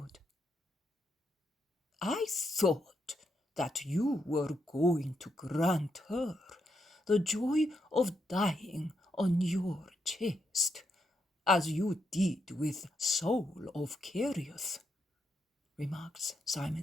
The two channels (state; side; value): normal; both; correlation 0.80